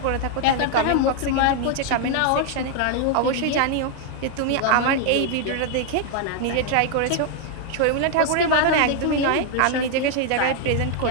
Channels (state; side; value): different; both; correlation 0.00